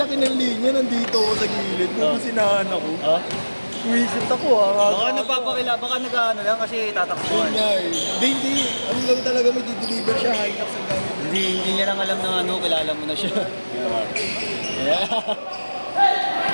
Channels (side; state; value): both; inverted; correlation -1.00